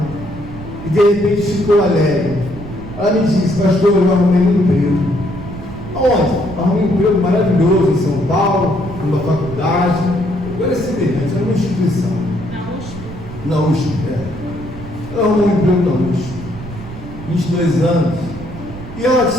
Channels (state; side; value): noise; right; rumble, 13 dB below the sound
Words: e de repente ficou alegre. Ela me disse: pastor, eu arrumei um emprego. Aonde? Arrumei um emprego maravilhoso em São Paulo, numa faculdade. Agora é semelhante, era uma instituição. Na USP, ela arrumou um emprego na USP, 22 anos, e ela